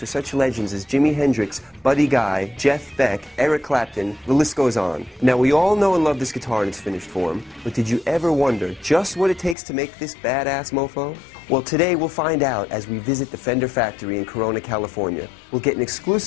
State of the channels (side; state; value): right; drops out; at 9.6 s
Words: such legends as Jimi Hendrix, Buddy Guy, Jeff Beck, Eric Clapton, the list goes on. Now, we all know and love this guitar in its finished form, but did you ever wonder just what it takes to make this badass mofo? Well, today we'll find out as we visit the Fender factory in Corona, California. We'll get an